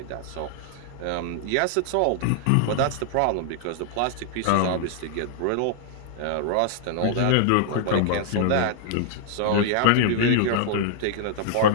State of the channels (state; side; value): different; both; correlation -0.01